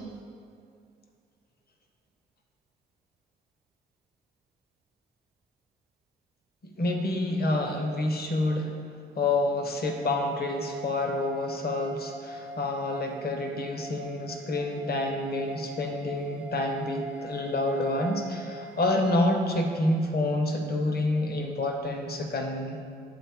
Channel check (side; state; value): both; normal; correlation 0.54